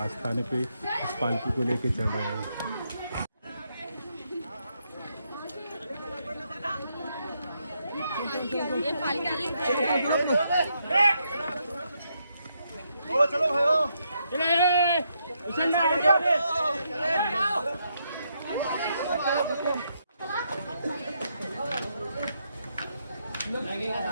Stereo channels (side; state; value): both; inverted; correlation -0.78